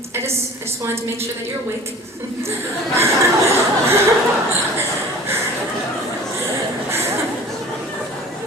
I just wanted to make sure that you're awake.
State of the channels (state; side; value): normal; both; correlation 0.43